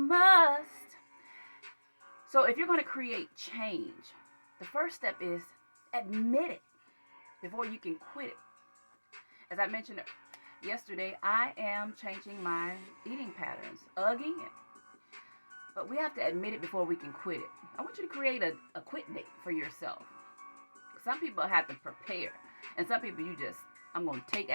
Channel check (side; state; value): both; inverted; correlation -1.00